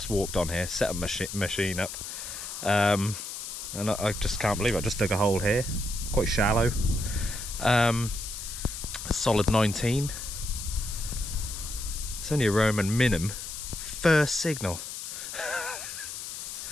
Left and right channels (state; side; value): noise; left; hiss, 8 dB below the sound